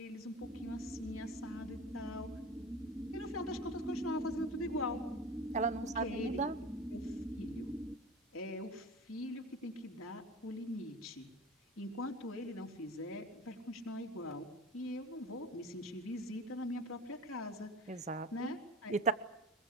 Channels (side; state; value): both; normal; correlation 0.34